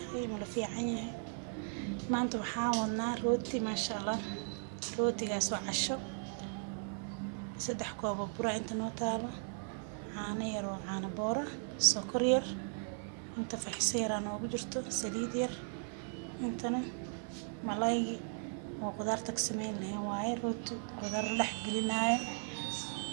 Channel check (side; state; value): left; silent; 53 dB below the other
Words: ملفي عيني ما أنتوا حاولنا روتي ما شاء الله روتي جاسو عشو سدح كوب برا أنت نوتالا عانير وعانى بورة سكرير أنت في حسير أنا وبجرتو سليدير أنتنا ملاي وقدرتك سمين اللي هواي روتي قدر لحق لنا